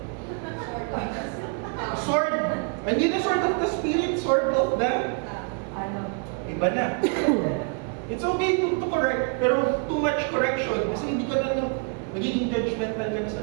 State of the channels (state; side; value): quieter; left; 38.9 dB